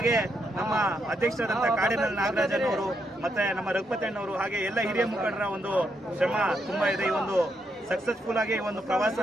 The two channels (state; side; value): normal; both; correlation 0.79